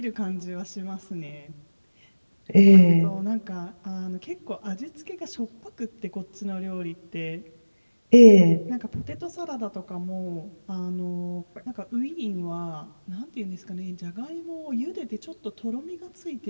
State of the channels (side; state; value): both; inverted; correlation -1.00